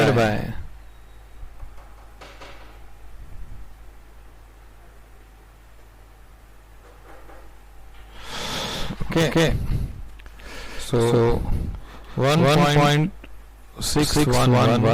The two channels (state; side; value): identical; both; correlation 1.00